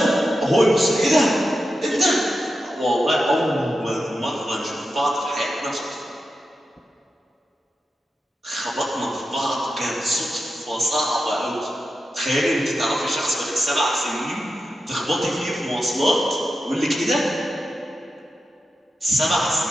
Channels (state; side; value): normal; both; correlation 0.90